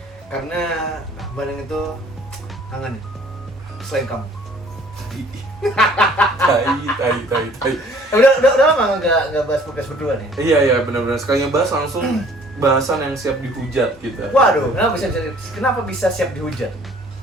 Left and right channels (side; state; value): both; normal; correlation 0.55